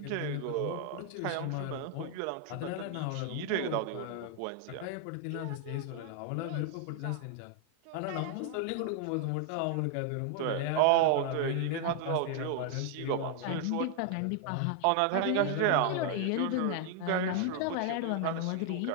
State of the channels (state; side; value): different; both; correlation 0.00